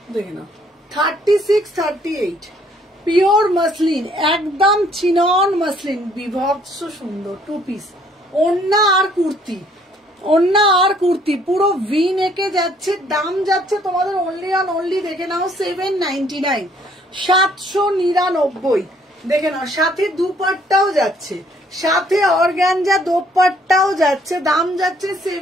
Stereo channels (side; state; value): both; normal; correlation 0.63